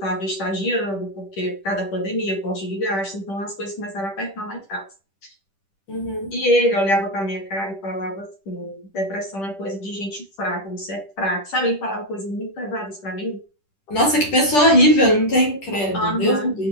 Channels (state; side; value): late; right; 10 ms